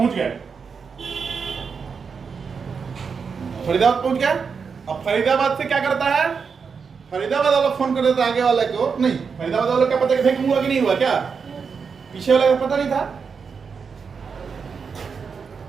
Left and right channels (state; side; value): quieter; left; 5.8 dB